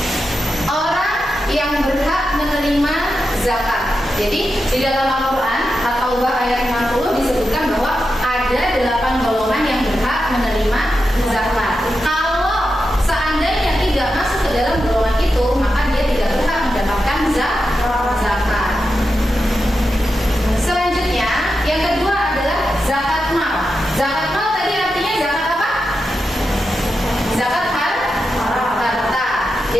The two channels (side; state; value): both; normal; correlation 0.89